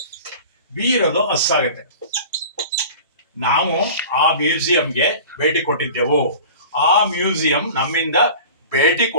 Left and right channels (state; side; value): inverted; both; correlation -0.39